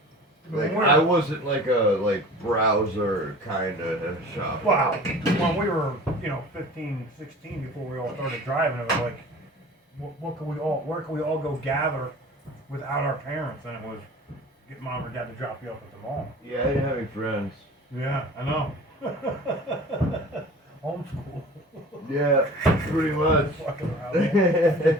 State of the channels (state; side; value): normal; both; correlation 0.42